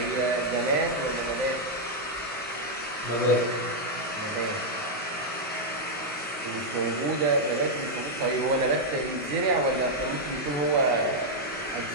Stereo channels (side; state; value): both; normal; correlation -0.02